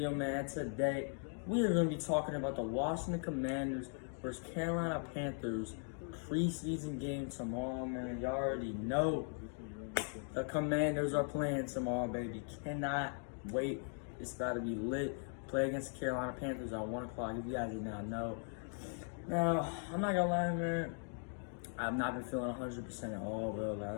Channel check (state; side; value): silent; right; 52 dB below the other